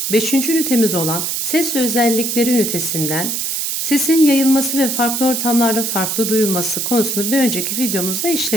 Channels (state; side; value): noise; right; hiss, 1 dB below the sound